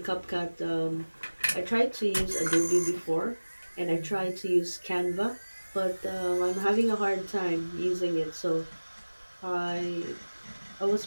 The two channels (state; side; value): inverted; both; correlation -1.00